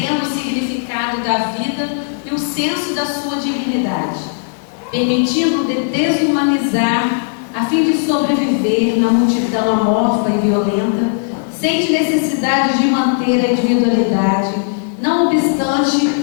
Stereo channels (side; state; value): right; silent; 62 dB below the other